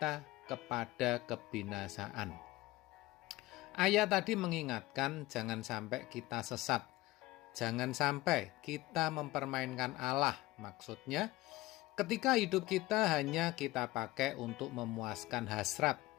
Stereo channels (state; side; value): quieter; right; 18.9 dB